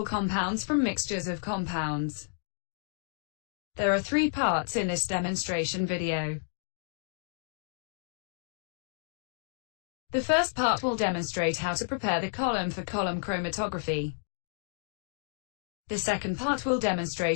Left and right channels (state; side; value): silent; right; digital silence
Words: compounds from mixtures of compounds. There are 3 parts in this demonstration video. The first part will demonstrate how to prepare the column for column chromatography. The second part will